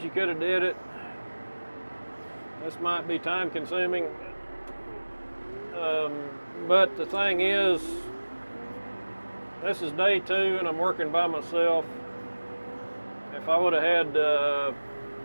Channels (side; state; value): both; inverted; correlation -1.00